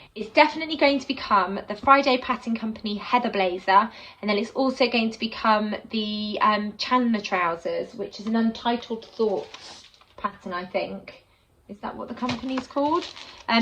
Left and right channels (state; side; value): identical; both; correlation 1.00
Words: It's definitely going to become the Friday Pattern Company Heather blazer, and then it's also going to become the Chandler trousers, which is an Untitled Thoughts pattern, I think. Is that what the company's called?